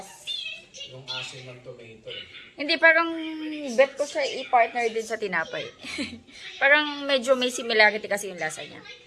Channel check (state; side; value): identical; both; correlation 1.00